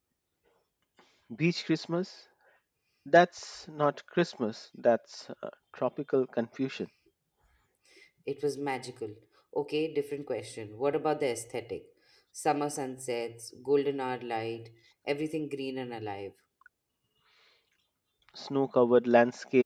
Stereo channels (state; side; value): identical; both; correlation 1.00